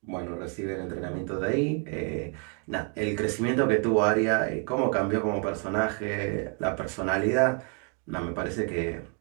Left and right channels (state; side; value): quieter; left; 39.6 dB